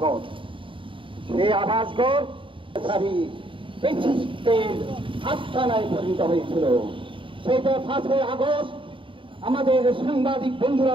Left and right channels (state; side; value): late; left; 0.25 ms